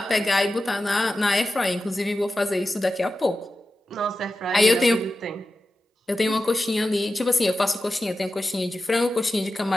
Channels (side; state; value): both; normal; correlation 0.92